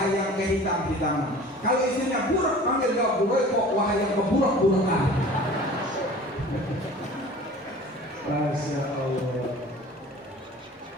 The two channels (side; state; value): both; normal; correlation 0.43